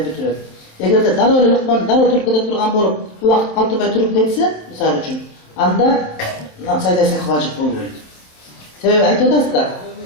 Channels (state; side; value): late; right; 27 ms